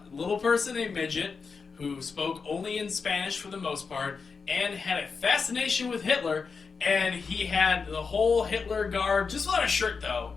little person, a midget, who spoke only in Spanish for the most part, and had a fascination with Hitler. And he had the whole Hitler garb, just without a shirt though.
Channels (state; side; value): quieter; right; 5.1 dB